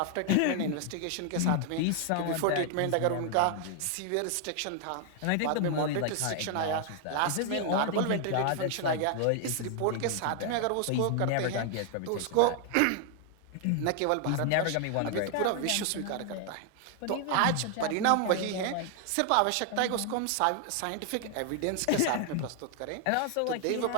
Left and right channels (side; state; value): both; different; correlation 0.00